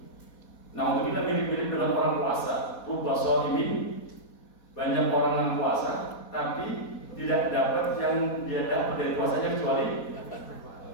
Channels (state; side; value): late; right; 4.2 ms